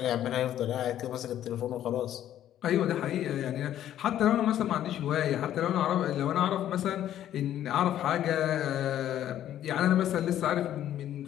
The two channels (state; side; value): quieter; right; 11.6 dB